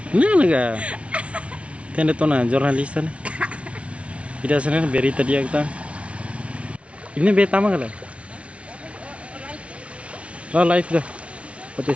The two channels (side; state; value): left; late; 0.062 ms